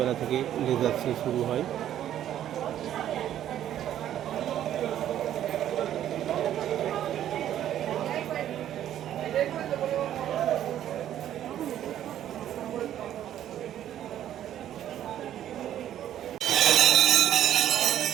থেকে লেজার শো শুরু হয়।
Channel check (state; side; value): quieter; left; 11.3 dB